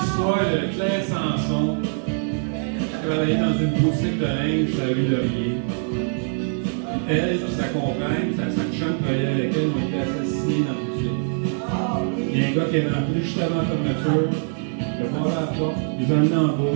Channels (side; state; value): left; silent; 63 dB below the other